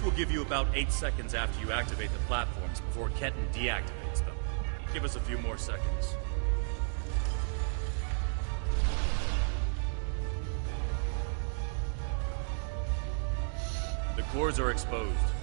will give you about 8 seconds after you activate the platforms before Ketten deactivates them. Give us a few more seconds. The cores are exposed.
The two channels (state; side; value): silent; left; digital silence